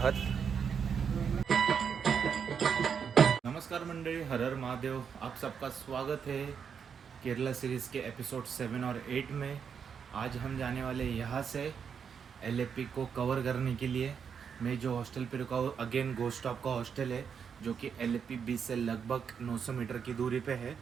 नमस्कार मंडळी, हर हर महादेव। आप सबका स्वागत है केरला सीरीज़ के एपिसोड 7 और 8 में। आज हम जाने वाले यहाँ से एलएपी को कवर करने के लिए। मैं जो हॉस्टल पे रुका हूँ अगेन गोस्ट स्टॉप का हॉस्टल है, जो कि एलएपी बीच से लगभग 900 मीटर की दूरी पे है।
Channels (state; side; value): quieter; left; 6.9 dB